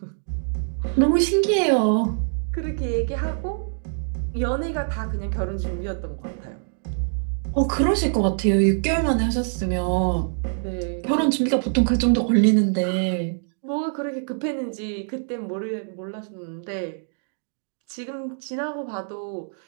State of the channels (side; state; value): left; silent; digital silence